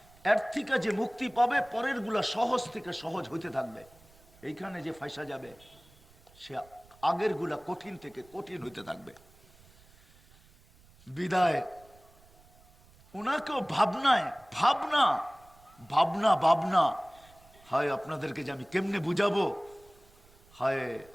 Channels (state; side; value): noise; right; rumble, 27 dB below the sound